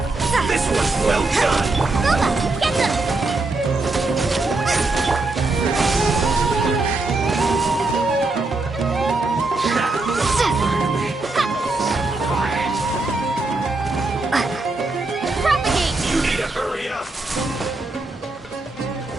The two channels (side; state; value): left; quieter; 3.2 dB